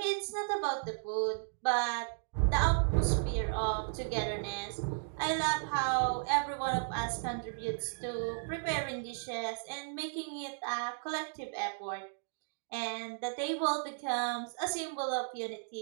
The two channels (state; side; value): silent; left; digital silence